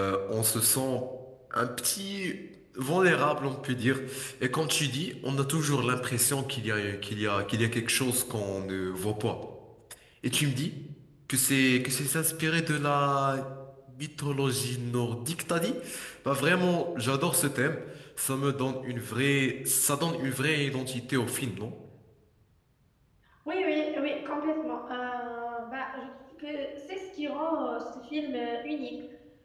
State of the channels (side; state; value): both; identical; correlation 1.00